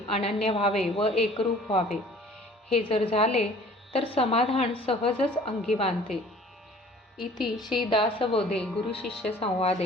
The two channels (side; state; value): both; normal; correlation 0.50